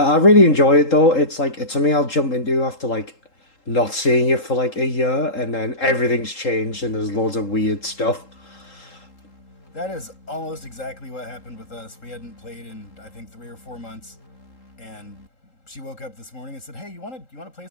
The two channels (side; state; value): right; late; 3.8 ms